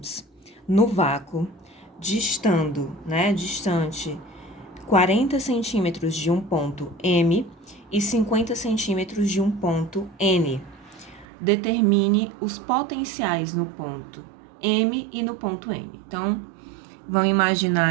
no vácuo, distante 40 centímetros de um ponto M e 50 centímetros de um ponto N. Determine os potenciais no ponto M e no ponto N. Então, vamos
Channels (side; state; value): left; drops out; at 11.2 s